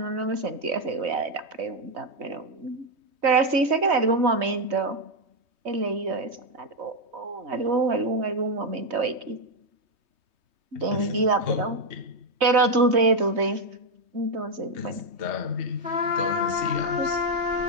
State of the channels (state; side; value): late; left; 3.2 ms